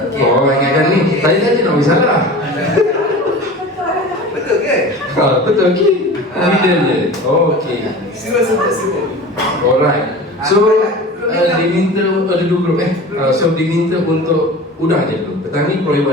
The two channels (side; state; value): both; normal; correlation 0.36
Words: Oh, ingatkan ni. Tadi saja nak bagi salah. Betul ke? Ha, betul okey. Middle je. Oh, okey. Semua. Alright. So diminta ada 2 grup so diminta untuk udang je dulu. Petang ni